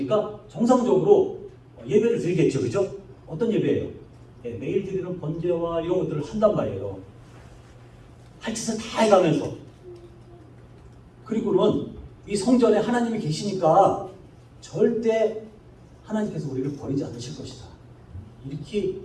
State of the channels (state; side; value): identical; both; correlation 1.00